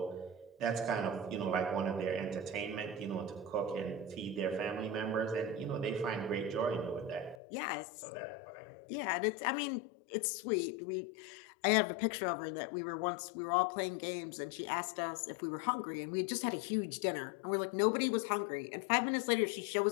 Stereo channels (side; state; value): right; drops out; at 7.4 s